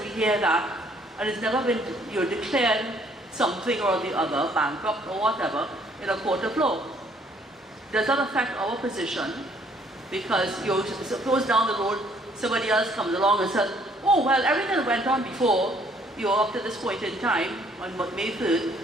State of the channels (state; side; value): normal; both; correlation 0.63